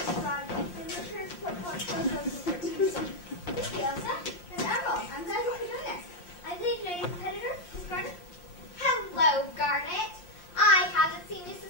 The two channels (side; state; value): right; late; 5.7 ms